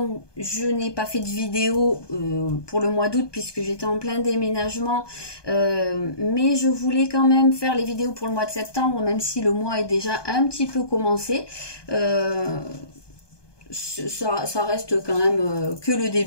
je n'ai pas fait de vidéo pour le mois d'août puisque j'étais en plein déménagement, mais je voulais quand même faire les vidéos pour le mois de septembre, même si le mois est déjà un petit peu commencé. Ça reste quand même que le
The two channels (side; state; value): right; late; 1.2 ms